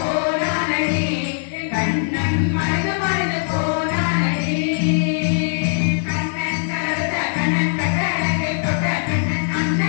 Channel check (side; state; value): right; silent; 65 dB below the other